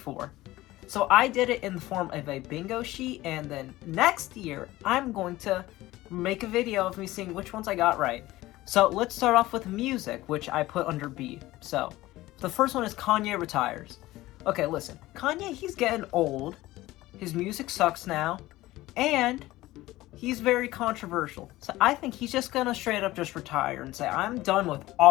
So I did it in the form of a bingo sheet, and then next year I'm going to make a video of me seeing which ones I got right. So let's start off with music, which I put under B. So the first one is Kanye retires. Okay, listen, Kanye, he's getting old. His music sucks now, and he's very controversial. So I think he's just gonna straight up just retire and say, I'm done with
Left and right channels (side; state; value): right; quieter; 17.5 dB